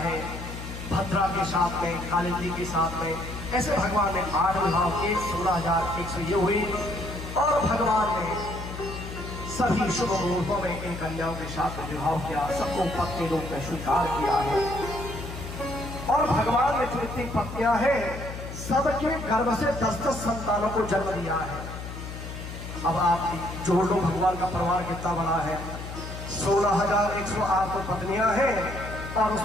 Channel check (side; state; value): left; noise; hum, 9 dB below the sound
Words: है, भद्रा के साथ में, कालिंदी के साथ में। ऐसे भगवान ने 8 विवाह किए, 16,100 ये हुई। और भगवान ने सभी शुभ मुहूर्तों में इन कन्याओं के साथ में विवाह किया, सबको पत्नी रूप में स्वीकार किया है। और भगवान ने जो इतनी पत्नियां हैं सबके गर्भ से 10-10 संतानों को जन्म दिया है। अब आप जोड़ लो भगवान का परिवार कितना बड़ा है। 16,108 तो पत्नियां हैं और